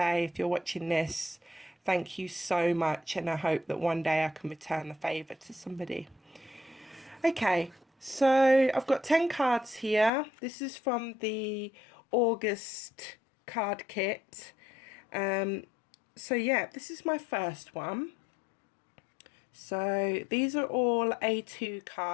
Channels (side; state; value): right; drops out; at 10.1 s